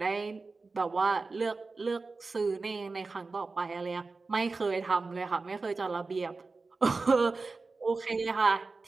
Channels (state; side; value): quieter; left; 3.9 dB